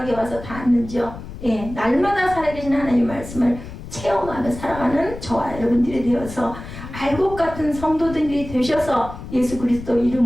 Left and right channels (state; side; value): noise; left; rumble, 12 dB below the sound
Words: 와서 닿았는지요. 예, 날마다 살아계신 하나님의 말씀을 체험하며 살아가는 저와 여러분들이 되어서 알곡 같은 성도들이 되셔서 예수 그리스도